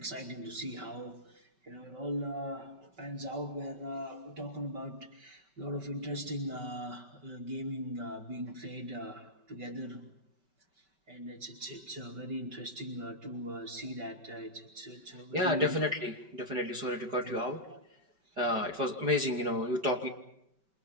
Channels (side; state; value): left; late; 5.2 ms